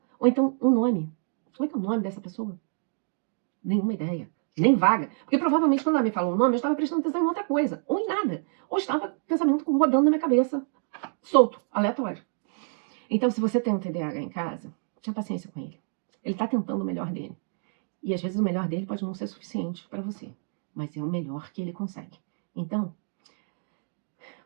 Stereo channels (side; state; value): left; silent; 60 dB below the other